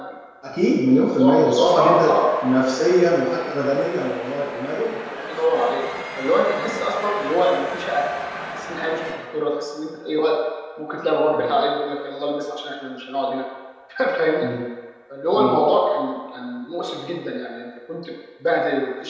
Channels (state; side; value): identical; both; correlation 1.00